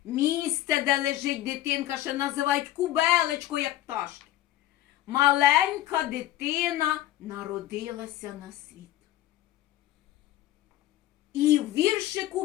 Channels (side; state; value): right; quieter; 14.4 dB